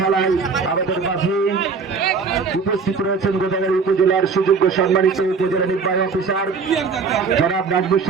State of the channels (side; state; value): left; quieter; 5.0 dB